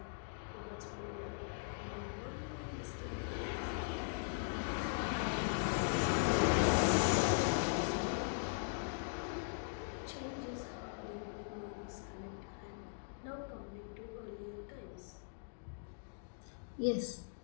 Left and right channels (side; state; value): right; silent; digital silence